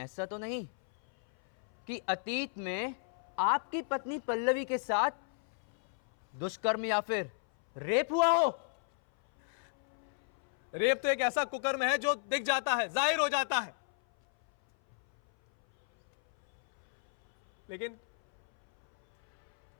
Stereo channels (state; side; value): silent; right; 56 dB below the other